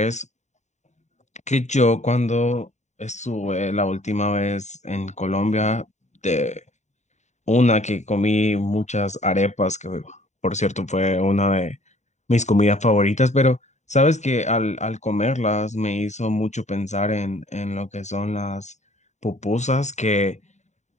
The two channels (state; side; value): late; right; 0.34 ms